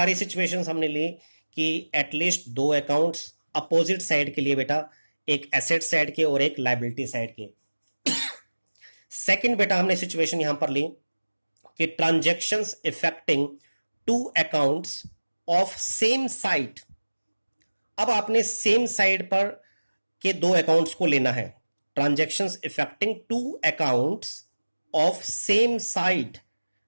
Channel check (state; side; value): inverted; both; correlation -1.00